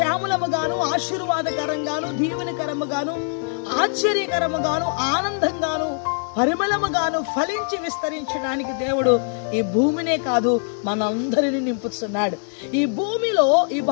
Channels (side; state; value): right; silent; digital silence